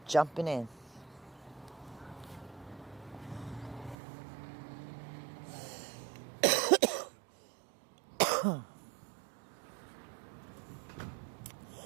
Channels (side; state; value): left; drops out; at 4.0 s